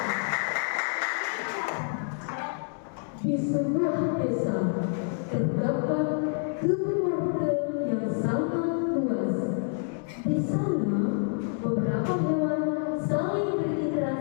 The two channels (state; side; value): silent; right; 56 dB below the other